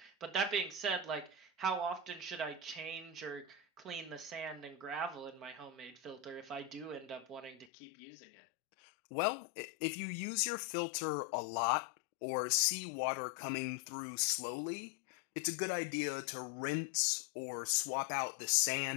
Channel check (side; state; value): right; drops out; at 7.7 s